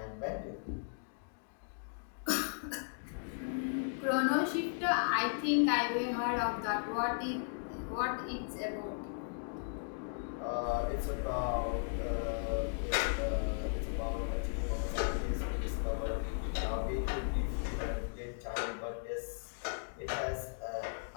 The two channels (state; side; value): silent; right; digital silence